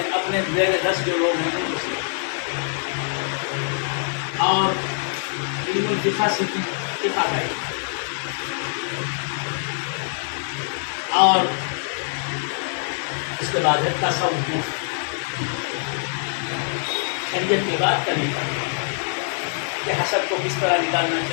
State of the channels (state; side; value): silent; right; 63 dB below the other